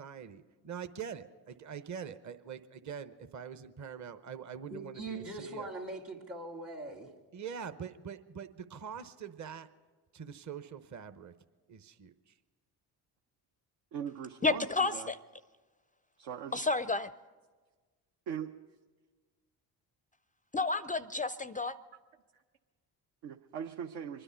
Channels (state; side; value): normal; both; correlation -0.01